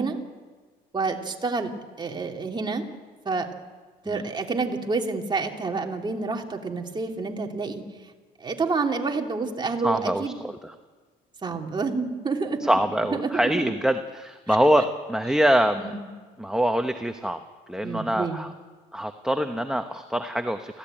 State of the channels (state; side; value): normal; both; correlation 0.81